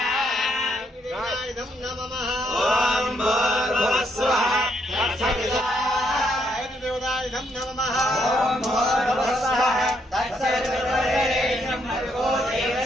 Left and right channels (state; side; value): normal; both; correlation 0.74